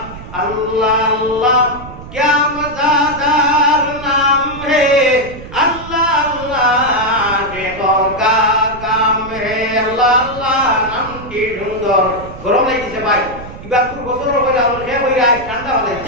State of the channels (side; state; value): right; noise; rumble, 14 dB below the sound